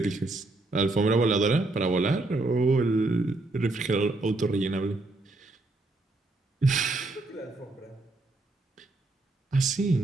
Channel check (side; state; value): left; quieter; 3.0 dB